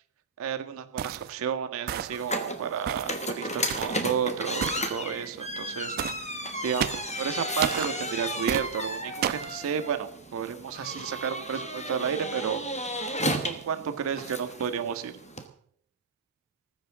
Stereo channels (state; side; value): quieter; left; 4.6 dB